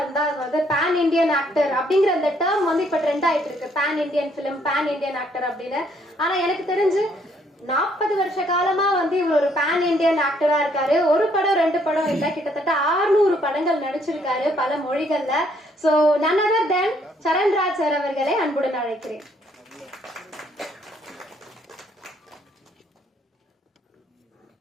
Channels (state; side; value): normal; both; correlation 0.68